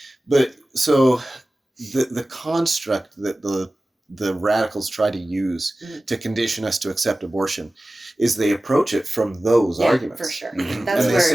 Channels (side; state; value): both; normal; correlation 0.96